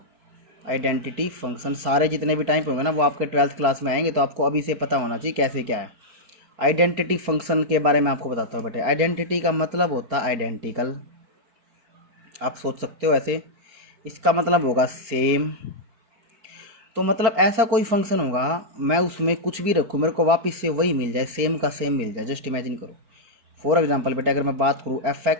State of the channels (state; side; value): late; left; 4.4 ms